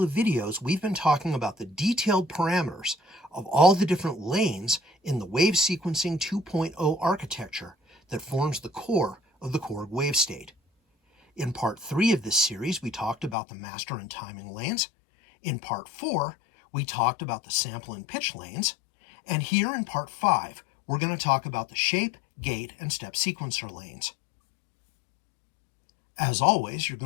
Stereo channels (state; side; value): drops out; right; at 13.4 s